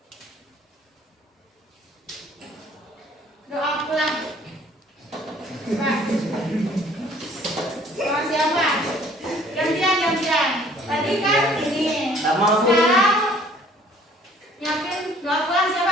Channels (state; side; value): normal; both; correlation 0.56